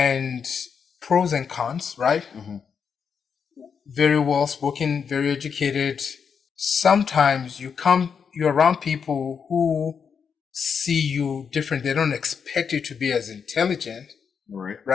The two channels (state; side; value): quieter; right; 6.5 dB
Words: pros and cons, right? Mm-hmm. Very well spoken, very educated. Sometimes you're around people who see you different. They don't expect you to be as intelligent,